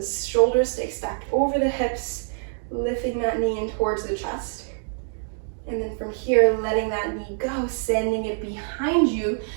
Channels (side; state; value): left; silent; digital silence